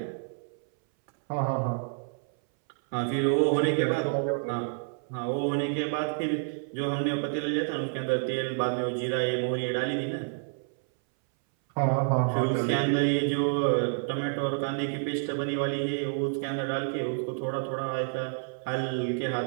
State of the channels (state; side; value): silent; left; 59 dB below the other